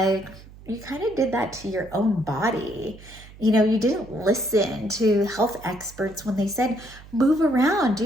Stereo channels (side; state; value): right; noise; hum, 20 dB below the sound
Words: you kind of did that to your own body. You didn't listen to health experts when they said, move around,